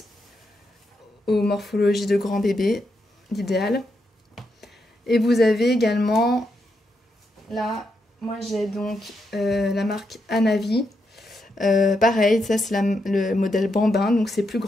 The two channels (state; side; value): normal; both; correlation 0.82